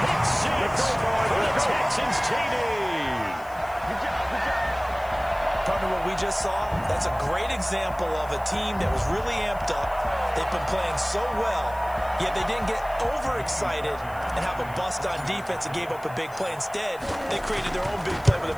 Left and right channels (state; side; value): noise; left; hiss, 23 dB below the sound